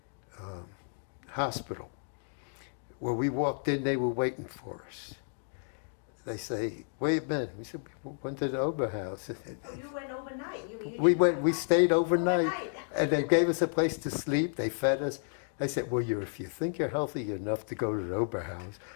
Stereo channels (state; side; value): silent; right; digital silence